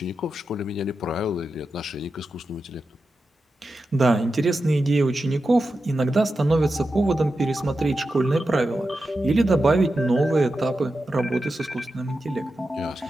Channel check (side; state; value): both; normal; correlation 0.90